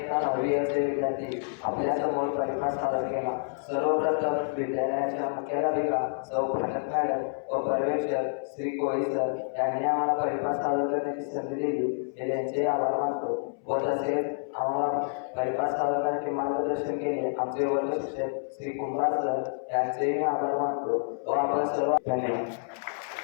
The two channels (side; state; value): right; silent; 59 dB below the other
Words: 9वी असे विद्यार्थी आपल्या समोर परिपाठ सादर केला। सर्वप्रथम विद्यालयाच्या मुख्याध्यापिका सौ भाटक मॅडम व पर्यवेक्षक श्री कोळी सर यांनी आम्हाला परिपाठ सादर करण्याची संधी दिली, हे त्यांचे आभार मानतो। व तसेच आम्हाला परिपाठ सादर करण्याचे मार्गदर्शन केले आमचे वर्ग शिक्षक श्री कुमार सर यांचेही आभार मानतो व आपण सर्व धन्यवाद।